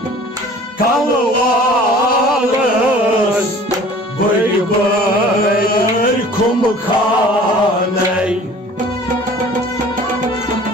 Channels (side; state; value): both; normal; correlation 0.47